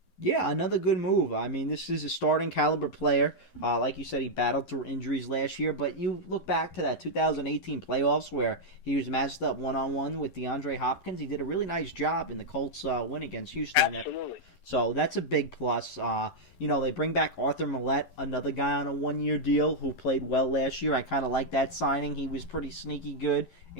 Yeah, another good move. I mean, this is a starting caliber player. Like you said, he battled through injuries last year, but you look back to that 2018 playoffs where he was matched up one-on-one with DeAndre Hopkins. He did a really nice job in the Colts win against Houston. Absolutely. So that's a big plus. They bring back Arthur Millette, another guy on a one-year deal who played well last year. I kind of like that signing. He was pretty sneaky good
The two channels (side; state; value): right; late; 11 ms